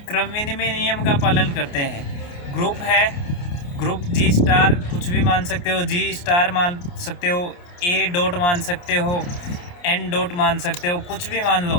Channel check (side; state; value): right; late; 28 ms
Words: क्रम विनिमय नियम का पालन करते हैं। ग्रुप है, ग्रुप जी स्टार कुछ भी मान सकते हो, जी स्टार मान सकते हो, ए डॉट मान सकते हो, एन डॉट मान सकते हो, कुछ भी मान